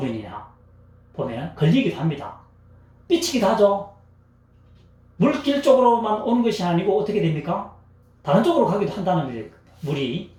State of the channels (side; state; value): both; identical; correlation 1.00